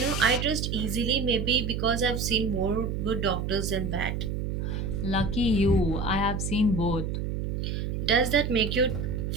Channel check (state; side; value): noise; right; hum, 2 dB below the sound